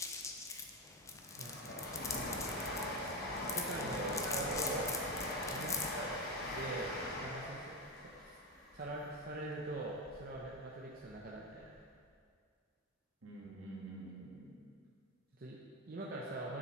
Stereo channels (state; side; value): normal; both; correlation 0.12